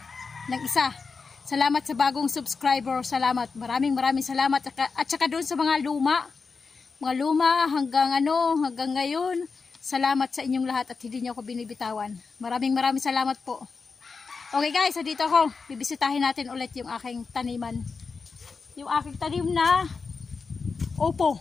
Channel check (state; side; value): quieter; right; 4.8 dB